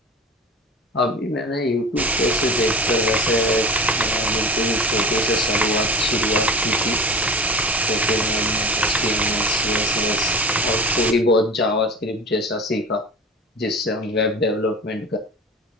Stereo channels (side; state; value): both; normal; correlation 0.34